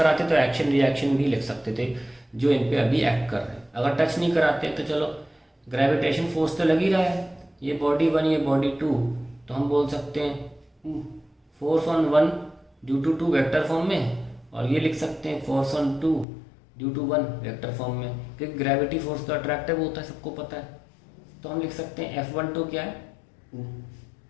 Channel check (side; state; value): right; drops out; at 16.2 s